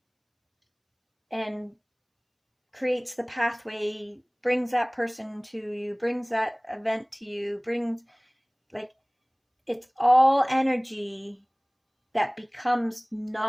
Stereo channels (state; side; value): identical; both; correlation 1.00